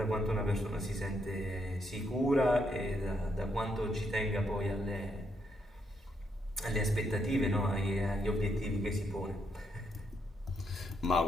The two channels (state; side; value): normal; both; correlation 0.77